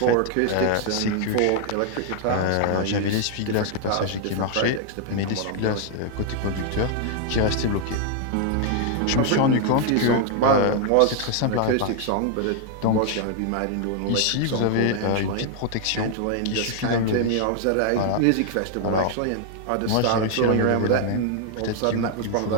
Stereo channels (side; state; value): both; different; correlation 0.00